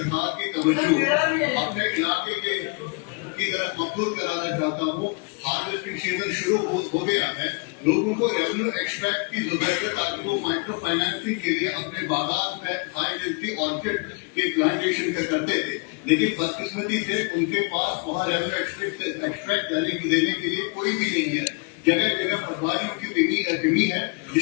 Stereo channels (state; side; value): quieter; right; 33.5 dB